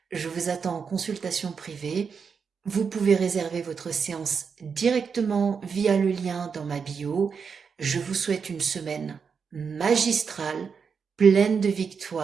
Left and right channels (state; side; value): quieter; left; 6.0 dB